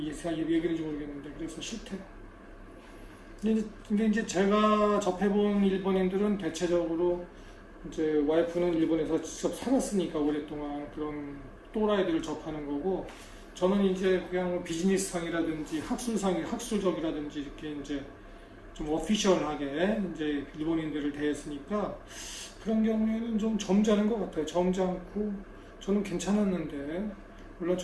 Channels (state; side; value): identical; both; correlation 1.00